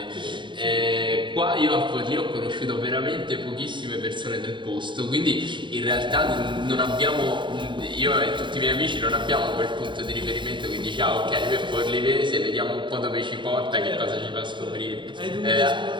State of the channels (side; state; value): left; late; 0.23 ms